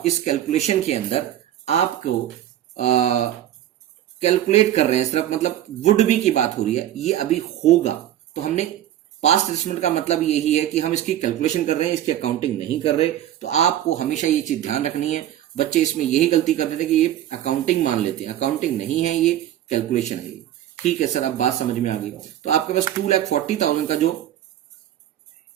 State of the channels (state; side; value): quieter; left; 12.1 dB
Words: इस कैलकुलेशन के अंदर आपको कैलकुलेट कर रहे हैं सिर्फ, मतलब वुड बी की बात हो रही है, ये अभी होगा। तो हमने पास्ट एडजस्टमेंट का मतलब यही है कि हम इसकी कैलकुलेशन कर रहे हैं, इसकी अकाउंटिंग नहीं कर रहे। तो आपको हमेशा ये चीज ध्यान रखनी है। बच्चे इसमें यही गलती कर देते हैं कि ये अकाउंटिंग मान लेते हैं, अकाउंटिंग नहीं है, ये कैलकुलेशन है ये। ठीक है सर, अब बात समझ में आ गई। तो आपके पास 2,40,000 का जो